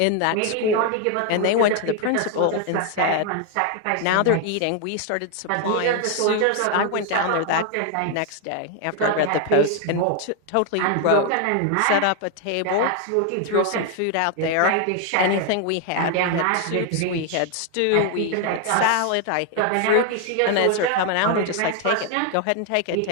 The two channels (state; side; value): different; both; correlation 0.01